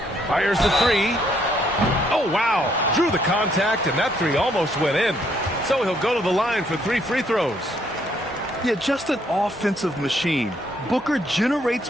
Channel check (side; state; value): both; normal; correlation 0.69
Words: Fires the 3. Oh, wow. Drew the contact, and that 3 almost went in. So he'll go to the line for 3 free throws. Yeah, just an offensive machine. Booker generates